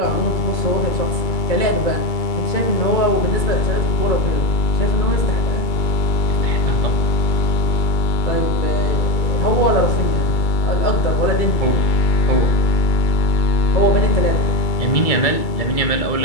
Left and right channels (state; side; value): late; right; 2.3 ms